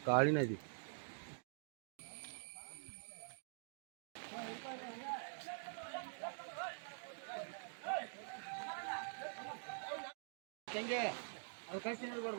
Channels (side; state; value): left; silent; digital silence